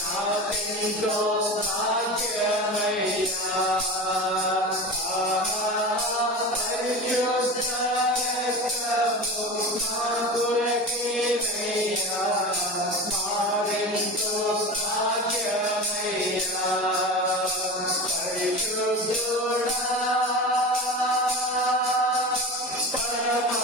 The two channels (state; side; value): normal; both; correlation 0.29